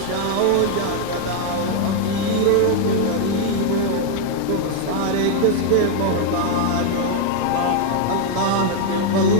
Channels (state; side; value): different; both; correlation 0.01